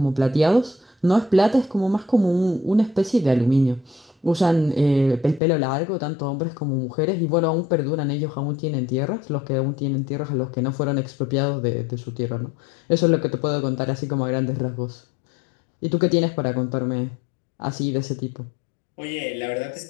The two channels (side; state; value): right; drops out; at 5.4 s